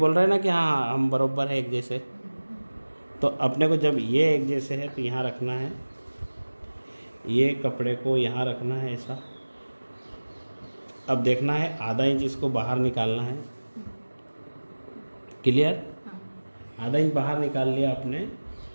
रहे हैं ना कि हाँ हम बराबर है एक जैसे, तो अपने को जब ये एक जैसे है तो यहाँ रखना है, ये कपड़े को यहाँ रखना है ऐसा। अब देखना है आधा इंच इसको बाहर निकालना है, क्लियर। आधा इंच बाहर निकाल लिया आपने।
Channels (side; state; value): both; inverted; correlation -1.00